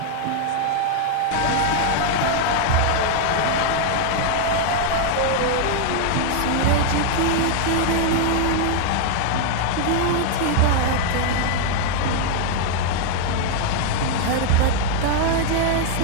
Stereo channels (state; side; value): different; both; correlation 0.00